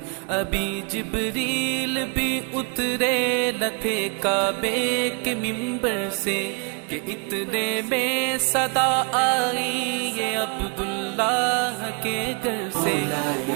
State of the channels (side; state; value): left; quieter; 35.0 dB